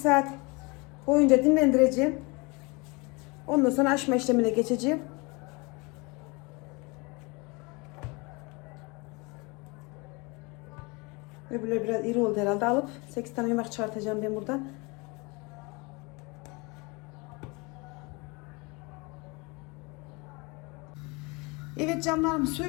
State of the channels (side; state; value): right; quieter; 27.6 dB